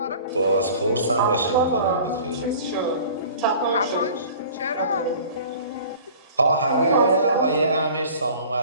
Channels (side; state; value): both; inverted; correlation -0.45